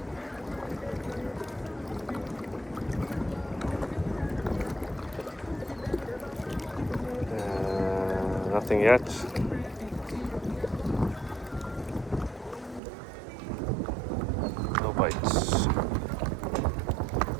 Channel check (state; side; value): drops out; left; at 12.8 s